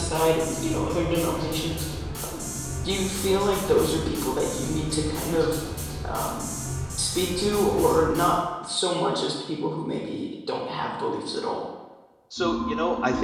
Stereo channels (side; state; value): both; identical; correlation 1.00